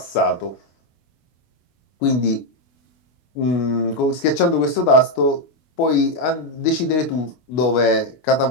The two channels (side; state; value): right; late; 24 ms